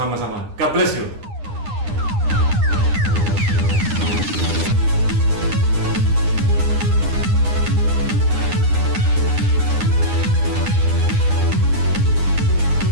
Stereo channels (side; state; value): left; late; 9.8 ms